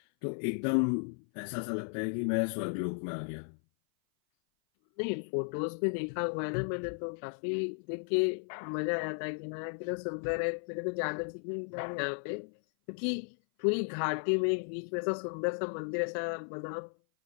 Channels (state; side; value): silent; right; 55 dB below the other